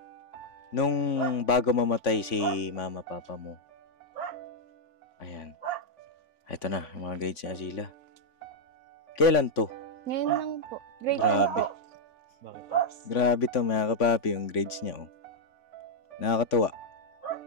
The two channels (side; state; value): right; late; 3.5 ms